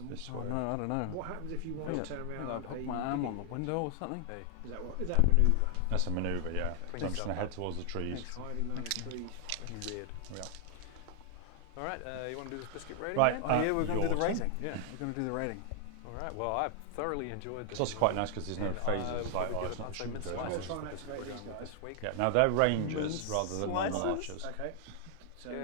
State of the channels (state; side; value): different; both; correlation 0.00